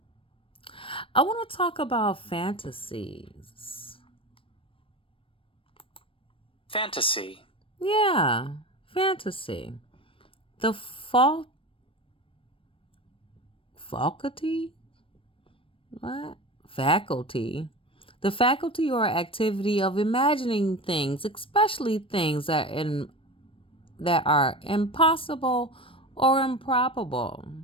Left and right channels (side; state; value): right; late; 0.26 ms